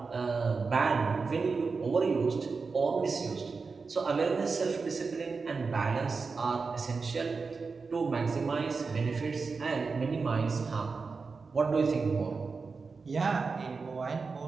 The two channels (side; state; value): left; quieter; 4.6 dB